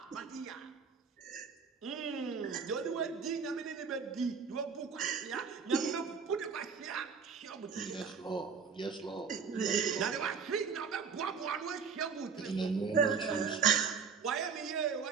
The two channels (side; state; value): left; quieter; 5.9 dB